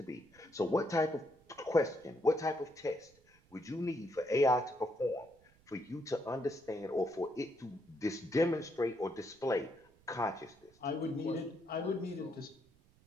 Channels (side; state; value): right; noise; rumble, 30 dB below the sound